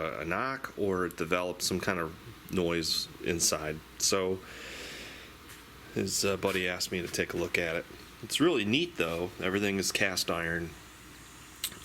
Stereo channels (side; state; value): both; identical; correlation 1.00